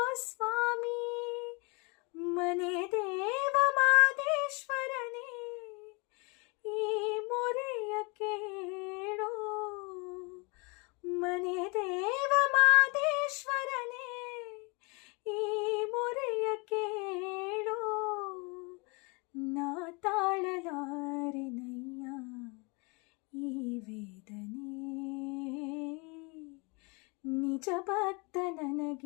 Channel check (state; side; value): quieter; right; 30.0 dB